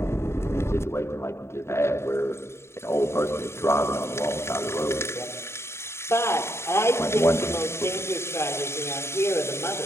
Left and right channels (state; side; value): late; right; 0.13 ms